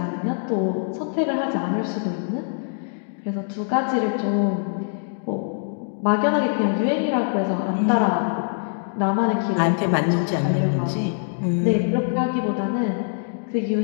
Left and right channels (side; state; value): right; silent; digital silence